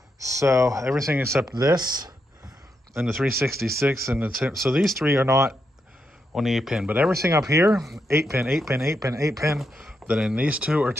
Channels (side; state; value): both; normal; correlation 0.83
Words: So everything except this and the 366 and the so these 3 are not on the 8-pin, but everything up here, 8-pin, 8-pin, 8-pin, 8-pin. Then in these 2 are